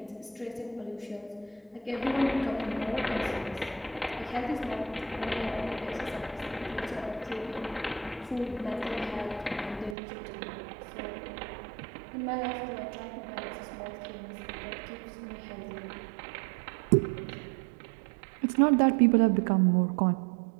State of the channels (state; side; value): drops out; left; at 10.0 s